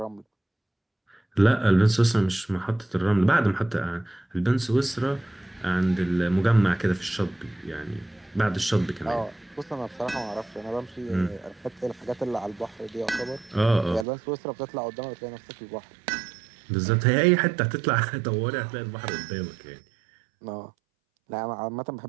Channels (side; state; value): left; drops out; at 14.1 s